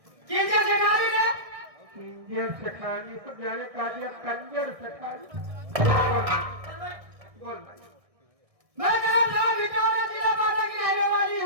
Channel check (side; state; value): left; late; 1.6 ms